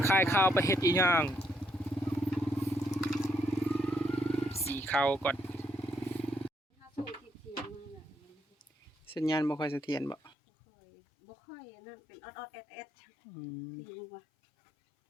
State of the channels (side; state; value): right; drops out; at 10.4 s